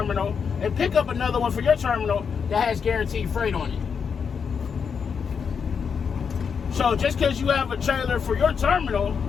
and pick up another one for your terminal that has guaranteed freight on it. So just because you have a trailer for your terminal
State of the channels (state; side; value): quieter; right; 6.4 dB